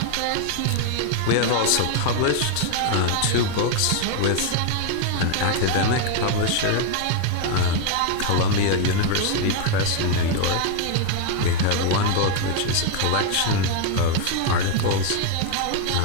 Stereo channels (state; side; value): different; both; correlation 0.01